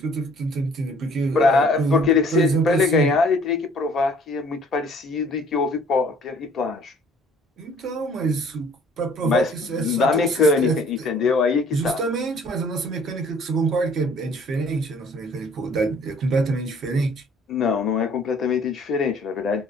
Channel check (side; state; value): both; normal; correlation 0.56